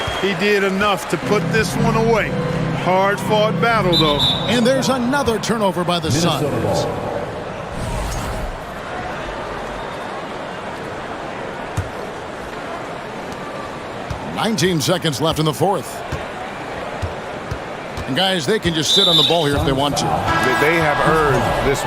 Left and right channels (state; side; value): identical; both; correlation 1.00